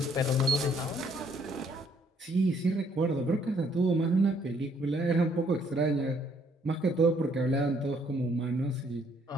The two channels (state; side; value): normal; both; correlation 0.66